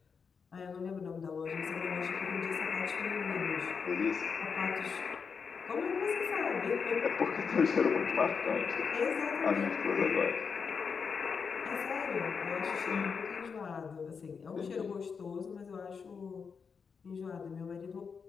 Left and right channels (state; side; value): quieter; right; 5.8 dB